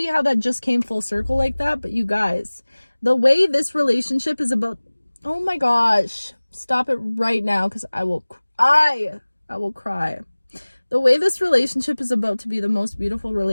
how that just came full circle like that. But you guys, the way this relationship is about, oh my gosh, stop it right now, because I will cry. I will cry. The way this relationship is about to be the most beautiful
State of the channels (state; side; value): inverted; both; correlation -1.00